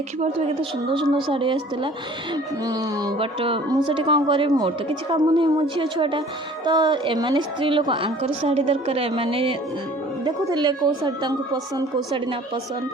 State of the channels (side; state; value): both; normal; correlation 0.50